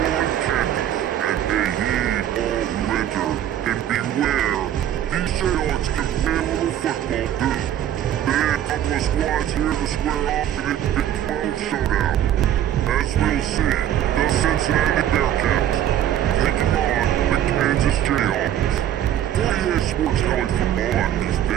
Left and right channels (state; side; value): quieter; left; 11.2 dB